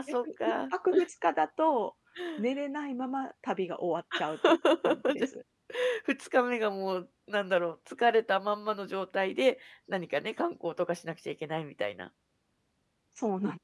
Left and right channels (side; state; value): both; identical; correlation 1.00